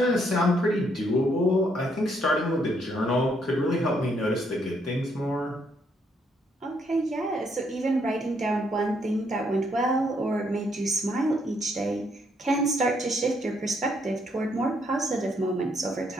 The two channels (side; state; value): both; normal; correlation 0.72